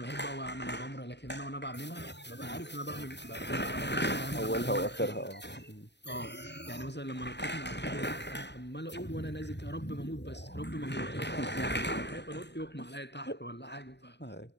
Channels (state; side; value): late; right; 0.50 ms